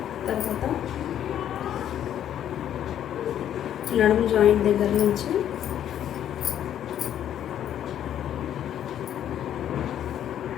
తర్వాత నడుము జాయింట్ దగ్గర నుంచి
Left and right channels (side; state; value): right; quieter; 10.5 dB